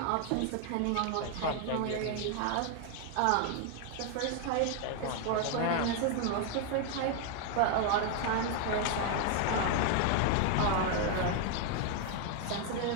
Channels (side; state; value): both; different; correlation 0.00